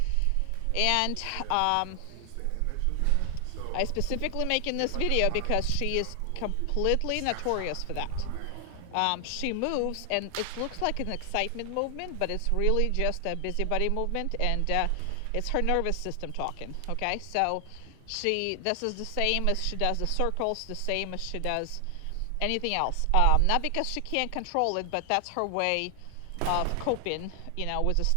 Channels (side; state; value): both; different; correlation 0.00